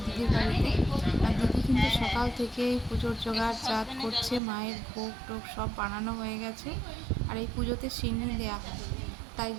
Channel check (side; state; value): left; drops out; at 4.4 s